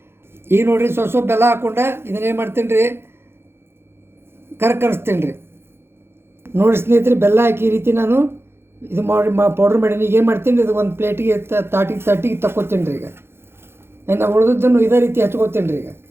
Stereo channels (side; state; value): left; late; 0.12 ms